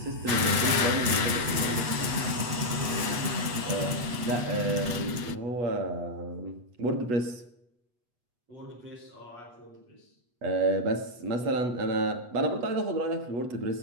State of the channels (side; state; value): left; late; 8.2 ms